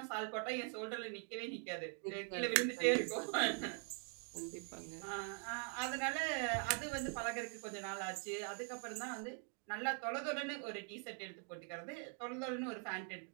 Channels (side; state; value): left; quieter; 39.0 dB